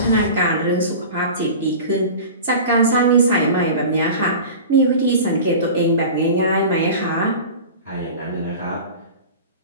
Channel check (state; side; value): inverted; both; correlation -0.35